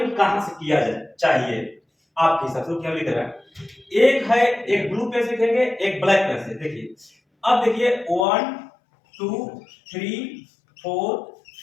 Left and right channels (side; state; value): right; drops out; at 8.2 s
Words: कहां से किया जाए चाहिए आपके हिसाब से, क्या लिख रहा है, एक है, एक ब्लू पेन से लिखेंगे, एक ब्लैक पेन से। देखिए अब देखिए 1 2 3 4